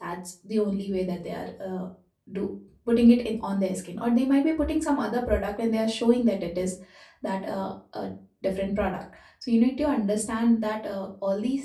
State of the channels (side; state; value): both; identical; correlation 1.00